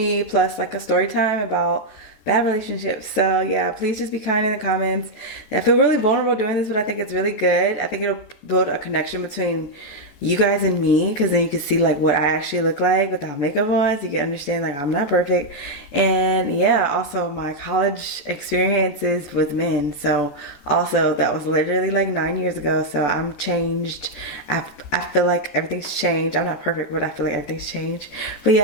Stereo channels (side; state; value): right; late; 14 ms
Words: plus like a story time about bad relationships. So yeah, please just be kind in the comments. I feel really vulnerable doing this, but I think it's really good. I think it'll build a connection between you guys and me, because then you can see like what I actually look like without makeup on, so you can understand like I'm not perfect. And yeah, also my college experiences with men, so also that was literally like 9 years ago, so I'm changed. I feel like everything's changed. I'm not perfect, but I feel like everything's changed. But